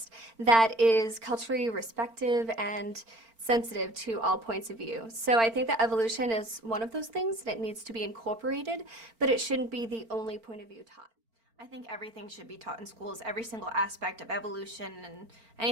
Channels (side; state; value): left; late; 4.4 ms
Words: that is culturally respectful and sensitive to all points of view. So I think that evolution is one of those things that needs to be incorporated, but it shouldn't be the only point of view taught. I think everything should be taught in schools, every single aspect of evolution and